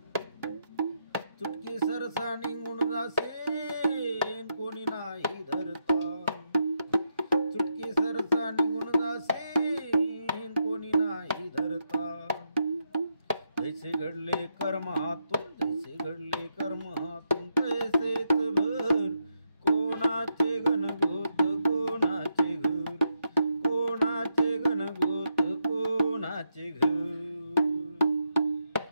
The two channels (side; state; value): both; inverted; correlation -0.82